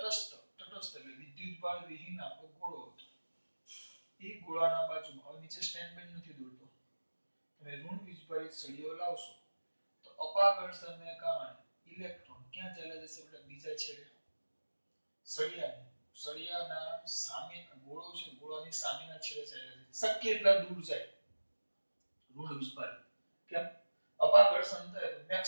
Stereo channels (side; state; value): both; inverted; correlation -1.00